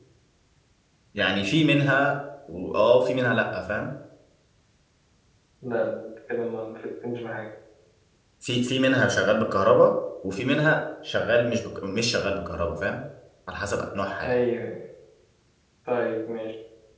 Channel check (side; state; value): both; identical; correlation 1.00